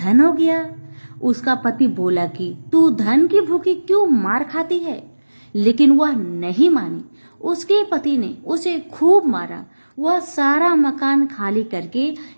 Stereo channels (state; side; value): inverted; both; correlation -1.00